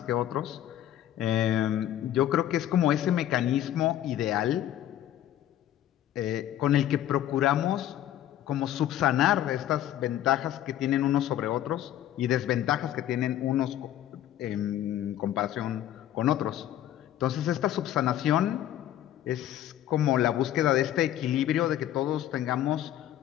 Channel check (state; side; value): quieter; right; 12.1 dB